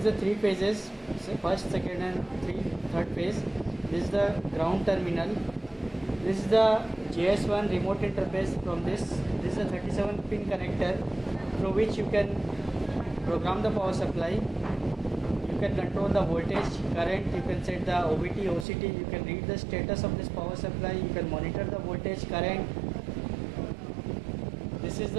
the three phases, so first, second and third phase. This is the ground terminal. This is the JS1 remote interface from this. This is a 37 pin connector through which you can program the power supply. You can control the voltage, current, you can set the OBT, OCT, you can read the status of this power supply, you can monitor the voltage, current. This is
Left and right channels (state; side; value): drops out; left; at 18.7 s